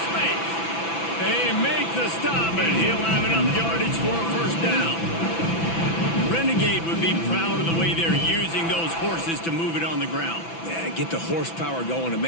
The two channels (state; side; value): late; right; 6.0 ms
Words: space. They make the stop, and he'll have enough yardage for a 1st down. Renegade would be proud of the way they're using those horses to move it on the ground. Yeah, get the horsepower going. And,